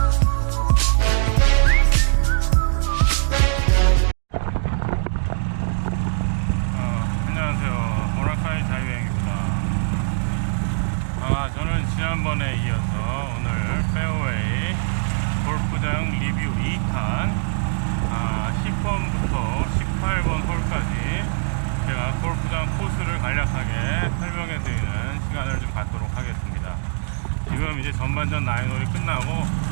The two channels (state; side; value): silent; left; digital silence